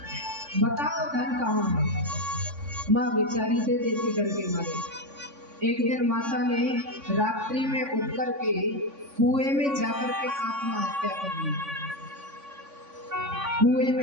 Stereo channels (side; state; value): left; late; 3.5 ms